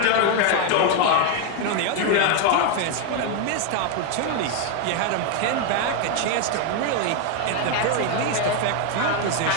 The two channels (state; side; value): different; both; correlation 0.01